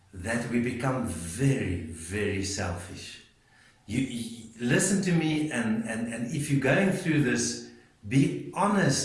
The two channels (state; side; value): identical; both; correlation 1.00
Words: that we become very, very selfish. You listen to me, and if you're going through this, be